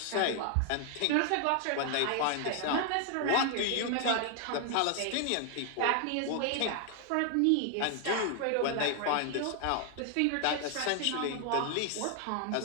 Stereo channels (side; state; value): both; different; correlation 0.00